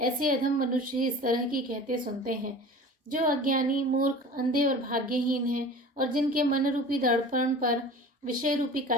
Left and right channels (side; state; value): both; normal; correlation 0.39